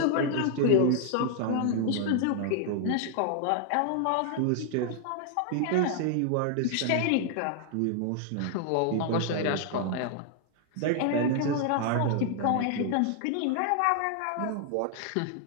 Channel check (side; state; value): both; different; correlation 0.00